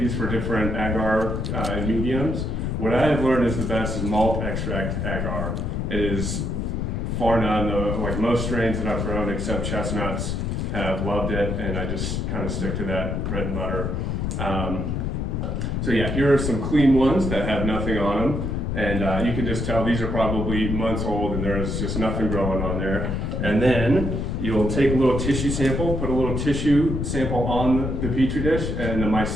for different agar mediums. What I have learned is the best is malt extract agar. It is far none, like most strains that I've grown except chestnuts have loved it, and I just kind of stick to that bread and butter. So yeah, here are some clean ones that have nothing on them, and you can just tell these are probably months old and there's just nothing growing on there. And then you'll take a little tissue sample, put a little tissue sample on the petri dish, and the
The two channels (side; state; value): left; noise; rumble, 1 dB below the sound